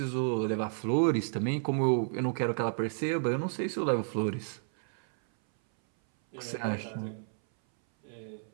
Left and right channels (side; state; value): left; silent; 57 dB below the other